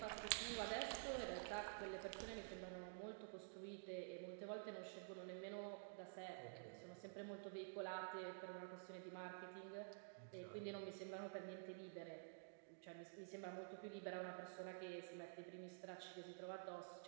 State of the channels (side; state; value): left; silent; digital silence